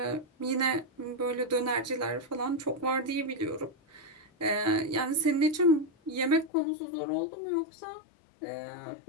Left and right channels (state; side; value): drops out; right; at 6.5 s